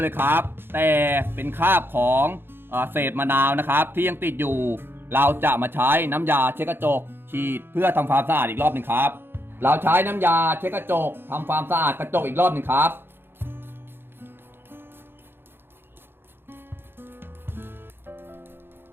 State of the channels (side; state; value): left; late; 0.10 ms